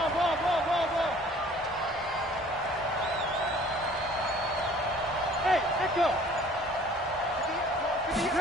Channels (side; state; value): both; normal; correlation 0.52